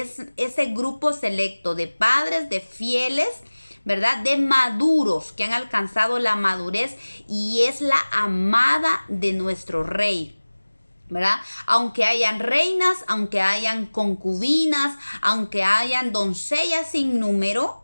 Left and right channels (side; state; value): both; inverted; correlation -1.00